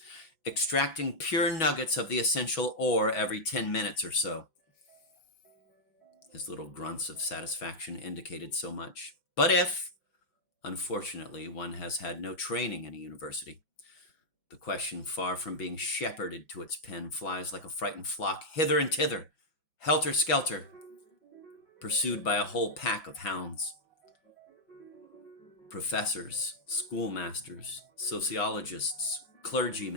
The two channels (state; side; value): late; right; 6.2 ms